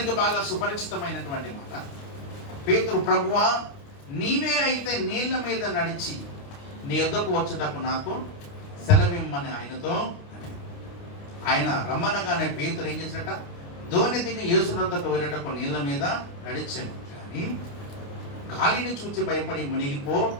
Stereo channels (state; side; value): late; right; 29 ms